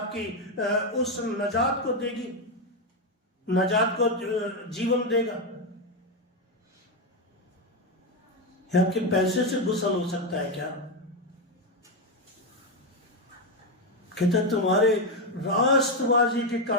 उस नजात को देगी, नजात को जीवन देगा? या आपके पैसे से गुसल हो सकता है क्या? कहते तुम्हारे राष्ट्रवादी के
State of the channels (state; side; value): normal; both; correlation 0.07